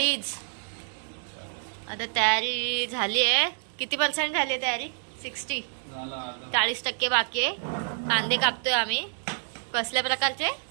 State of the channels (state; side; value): silent; left; digital silence